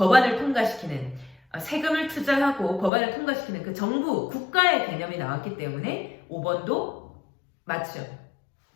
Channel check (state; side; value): drops out; right; at 2.9 s